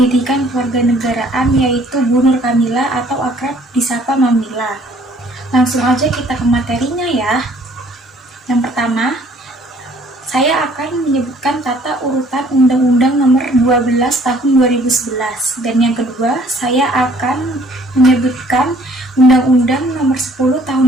Kewarganegaraan, yaitu Bu Nur Kamila atau akrab disapa Mamila. Langsung aja kita ke materinya ya. Yang pertama, saya akan menyebutkan tata urutan Undang-Undang Nomor 12 Tahun 2011. Dan yang kedua, saya akan menyebutkan Undang-Undang Nomor 10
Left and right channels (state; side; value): normal; both; correlation 0.58